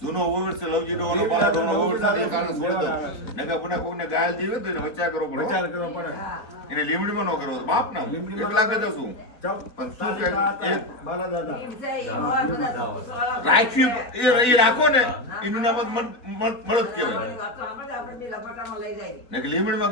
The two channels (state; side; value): late; right; 4.3 ms